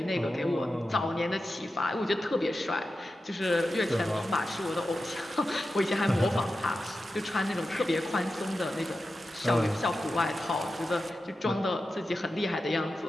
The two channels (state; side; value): normal; both; correlation 0.92